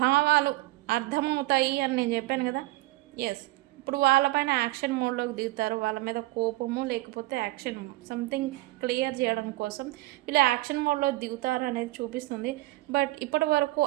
భావాలు అర్థమవుతాయి అని నేను చెప్పాను కదా. ఎస్, ఇప్పుడు వాళ్ళపైన యాక్షన్ మోడ్లోకి దిగుతారు. వాళ్ళ మీద కోపము లేకపోతే యాక్షన్ సంథింగ్ క్లియర్ చేయడం కోసం వీళ్ళు యాక్షన్ మోడ్లో దిగుతారు అనేది చూపిస్తుంది. బట్ ఇప్పటి వరకు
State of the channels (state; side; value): quieter; left; 19.6 dB